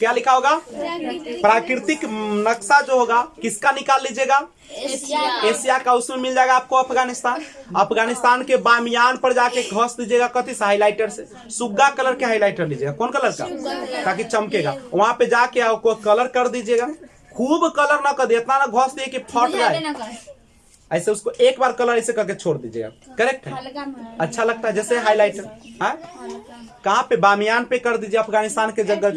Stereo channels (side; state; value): both; identical; correlation 1.00